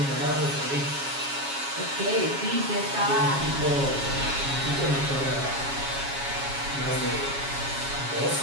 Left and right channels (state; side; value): late; left; 7.3 ms